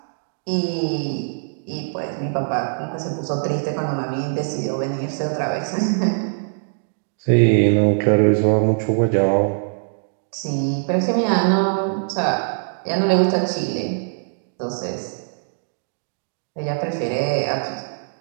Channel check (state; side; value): silent; left; digital silence